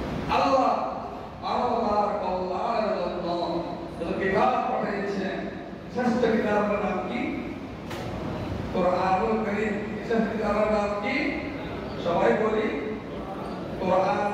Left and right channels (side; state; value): both; identical; correlation 1.00